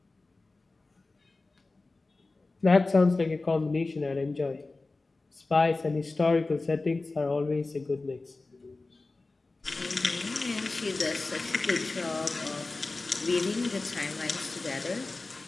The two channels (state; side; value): quieter; right; 3.4 dB